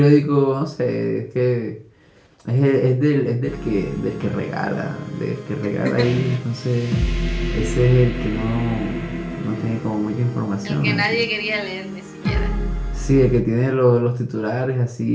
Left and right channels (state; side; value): identical; both; correlation 1.00